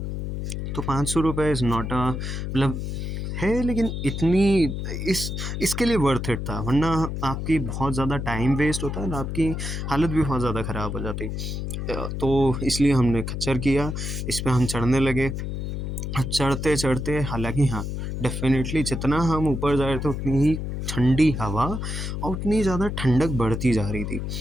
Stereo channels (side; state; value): left; noise; hum, 4 dB below the sound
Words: तो 500 रुपये इज़ नॉट अ मतलब है, लेकिन इतनी इसके लिए वर्थ इट था, वरना आपकी बहुत ज़्यादा टाइम वेस्ट होता है और आपकी हालत भी बहुत ज़्यादा ख़राब हो जाती। तो इसलिए हमने खच्चर किया, इस पे हम चढ़ने लगे। चढ़ते चढ़ते हालांकि हाँ, डेफिनेटली जितना हम ऊपर जा रहे थे उतनी ही ठंडी हवा और उतनी ज़्यादा ठंडक बढ़ती जा रही थी।